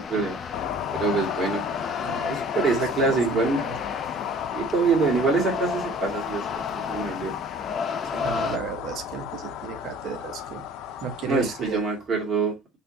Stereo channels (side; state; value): both; normal; correlation 0.49